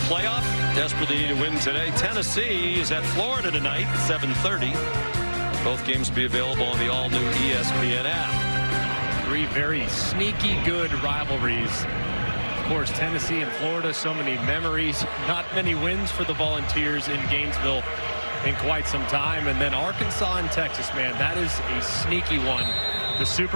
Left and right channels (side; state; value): both; inverted; correlation -1.00